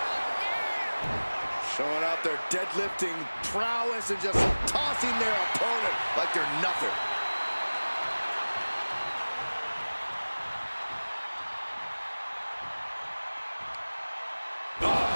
Showing out their deadlifting prowess and just tossing their opponent like they're nothing.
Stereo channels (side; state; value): both; inverted; correlation -1.00